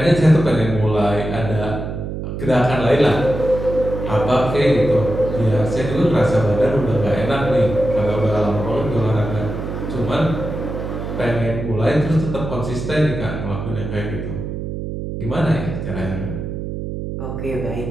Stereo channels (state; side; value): noise; right; hum, 6 dB below the sound